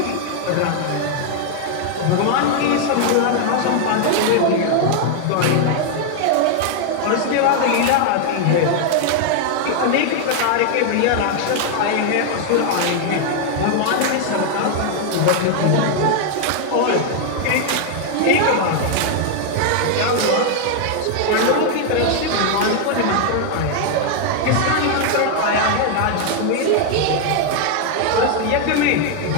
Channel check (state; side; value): different; both; correlation 0.00